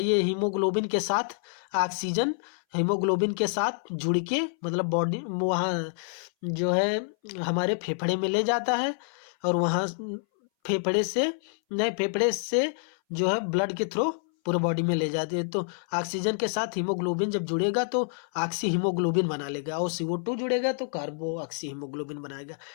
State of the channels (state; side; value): silent; right; 60 dB below the other